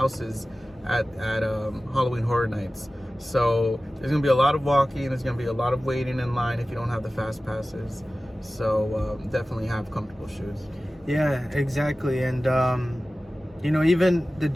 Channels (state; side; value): normal; both; correlation 0.96